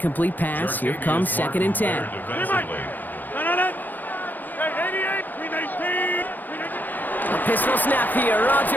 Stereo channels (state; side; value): late; right; 0.086 ms